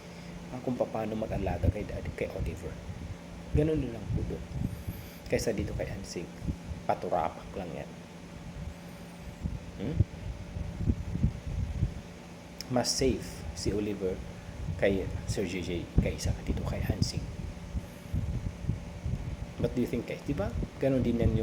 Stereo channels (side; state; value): both; identical; correlation 1.00